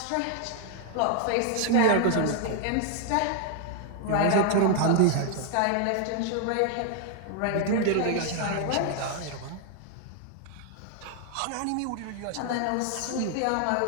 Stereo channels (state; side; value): different; both; correlation 0.00